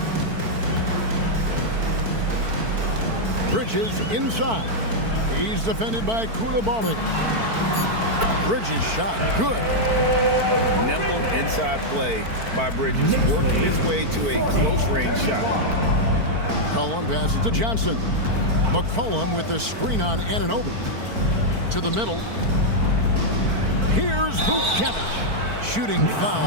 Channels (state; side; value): late; left; 4.5 ms